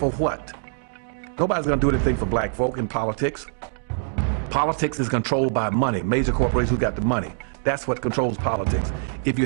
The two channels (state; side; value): silent; left; digital silence